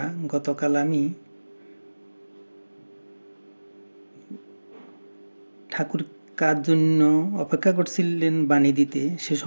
গতকাল আমি ঠাকুর কার জন্য অপেক্ষা করছিলেন বাণী দিতে সে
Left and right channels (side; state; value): both; inverted; correlation -1.00